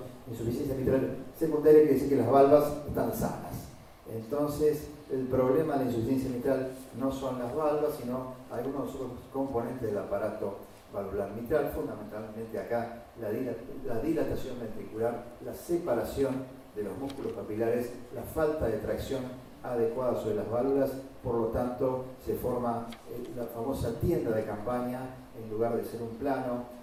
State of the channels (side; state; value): both; identical; correlation 1.00